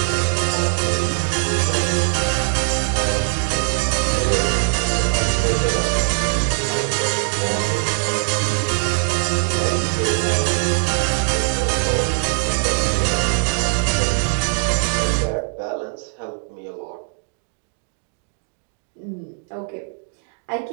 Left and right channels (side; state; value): left; silent; digital silence